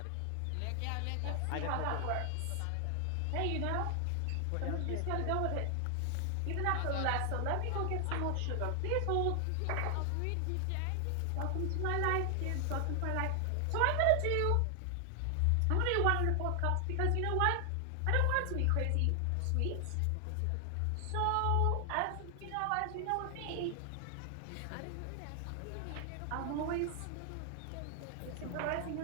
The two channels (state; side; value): different; both; correlation 0.00